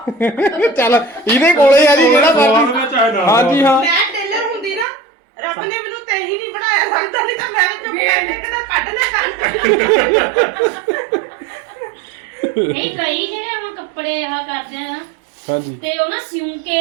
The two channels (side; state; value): left; drops out; at 4.9 s